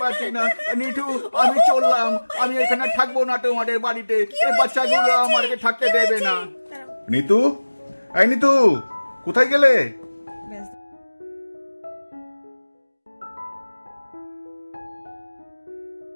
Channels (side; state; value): both; inverted; correlation -1.00